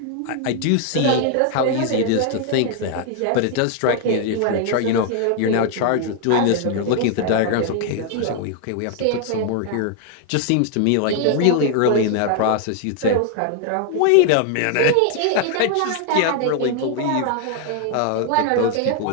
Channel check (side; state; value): both; different; correlation 0.00